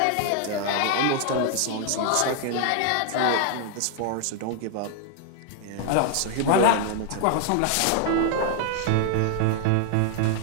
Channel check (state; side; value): different; both; correlation 0.00